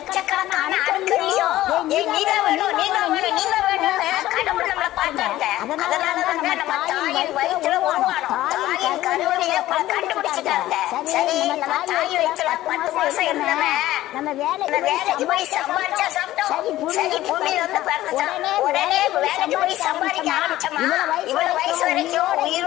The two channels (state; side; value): quieter; right; 15.2 dB